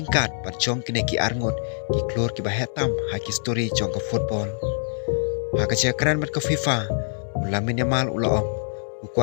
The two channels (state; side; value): silent; right; digital silence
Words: pat jong kine ki arngot ki klor ki ba hetam ha ki story jong ka football ha ka jakran bat ka FIFA ulamin yamal ula ong